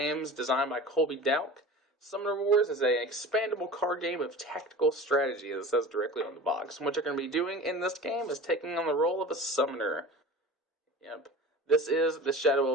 designed by Colby Dowk. Summoner Wars is an expandable card game of tactical strategy, as it says directly on the box. And what you're going to be doing in this game is taking on the role of a summoner. Yep. This is the Shadow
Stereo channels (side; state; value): both; normal; correlation 0.36